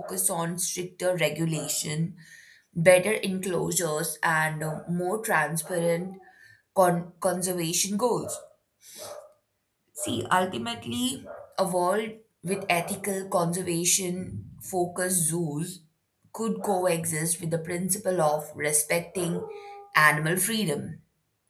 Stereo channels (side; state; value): both; identical; correlation 1.00